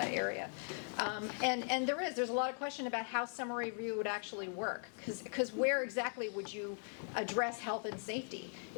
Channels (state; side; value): silent; right; 51 dB below the other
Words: And there's a lot of question about how summary review would actually work, because where exactly would you address health and safety